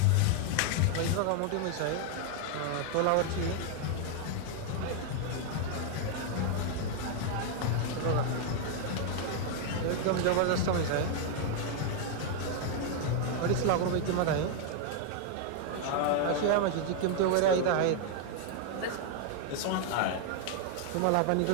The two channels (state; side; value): different; both; correlation 0.00